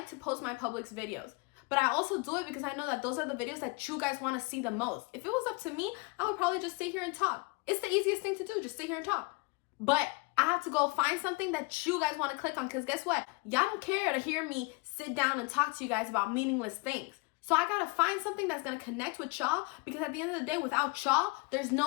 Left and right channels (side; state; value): right; quieter; 28.3 dB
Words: to post my Publix videos, but I also do it because I know that those are the videos that you guys want to see the most. If it was up to me, I would probably just sit here and talk. It's the easiest thing to do, just sit here and talk. But I have to go find something that you guys want to click on, because guess what? Y'all don't care to hear me sit down and talk to you guys about meaningless things. So I gotta find something that's gonna connect with y'all, because at the end of the day, without y'all, there's